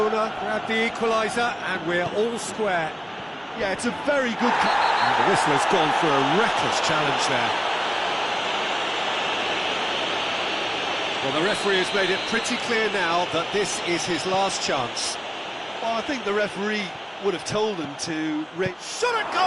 grabbed the equaliser, and we're all square. Yeah, it's a very good... And the whistle has gone for a reckless challenge there. Well, the referee has made it pretty clear now that this is his last chance. Well, I think the referee would have told him to... Shot at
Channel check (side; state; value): both; identical; correlation 1.00